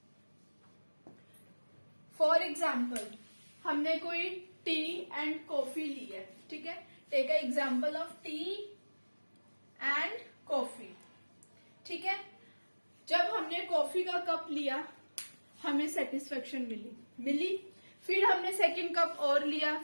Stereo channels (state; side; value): inverted; both; correlation -1.00